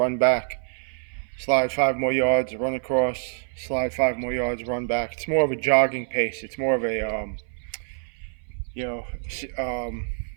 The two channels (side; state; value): left; silent; 59 dB below the other